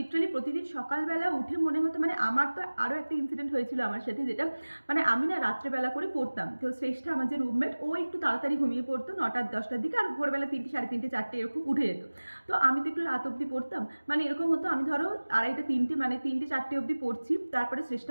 প্রতিদিন সকালবেলা উঠে মনে হতো, মানে আমার তো আরও একটা ইনসিডেন্ট হয়েছিল আমার সাথে, যেটা মানে আমি না রাত্রেবেলা করে পড়তাম, তো শ্রেষ্ঠা আমার যে রুমমেট ও একটু তাড়াতাড়ি ঘুমিয়ে পড়তো 9টা-10টার দিকে, আর ভোরবেলা 3টে, 3:30, 4টে এরকম উঠে যেত। তো আমি তো একটু রাত অবধি পড়তাম, মানে এরকম হতো আমি ধরো 2:30, 3টে, মানে 3টে, 4টে অবধি পড়ছি, তারপরে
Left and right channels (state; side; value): inverted; both; correlation -1.00